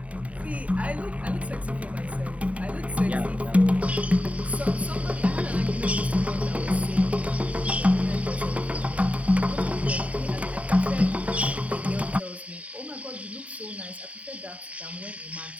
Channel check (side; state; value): left; late; 0.067 ms